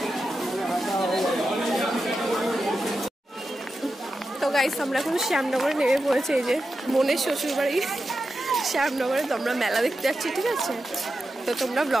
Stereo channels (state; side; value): normal; both; correlation 0.90